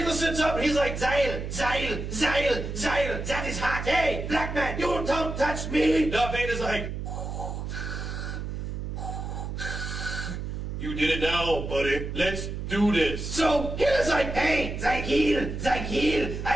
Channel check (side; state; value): right; noise; hum, 5 dB below the sound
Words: sits up and he's like, Zeil, that is hot. Hey, black man, you don't touch me. Darth Vader's like, you did it now, buddy. Let's do this. So, Hitler's like, hey, Zeil,